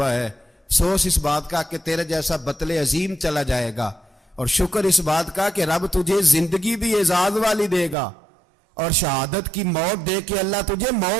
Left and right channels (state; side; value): drops out; left; at 8.0 s